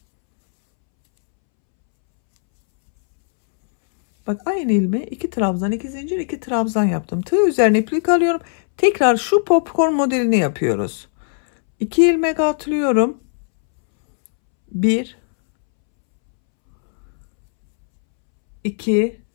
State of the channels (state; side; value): silent; right; 67 dB below the other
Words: Bak aynı ilmeğe 2 trabzan, 2 zincir, 2 trabzan yaptım. Tığ üzerine iplik alıyorum. Tekrar şu popcorn modelini yapıyoruz. 2 ilmek atlıyorum. 1 2